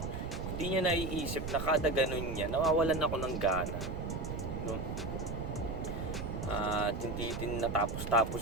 Hindi niya naiisip na kada ganun niya, nawawalan ako ng gana. At hindi din natapos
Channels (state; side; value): noise; right; rumble, 5 dB below the sound